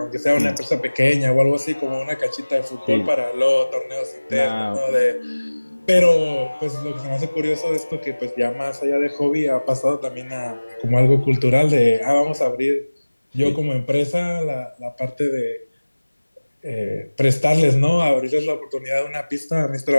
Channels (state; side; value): inverted; both; correlation -1.00